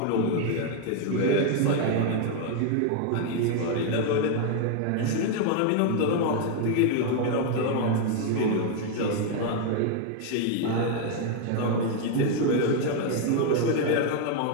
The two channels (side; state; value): both; different; correlation 0.00